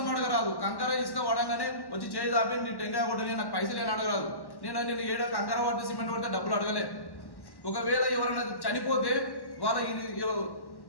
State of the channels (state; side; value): late; right; 1.1 ms